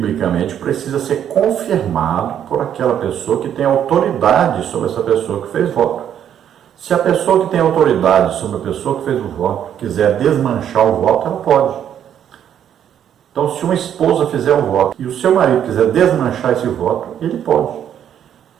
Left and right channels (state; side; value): quieter; left; 9.6 dB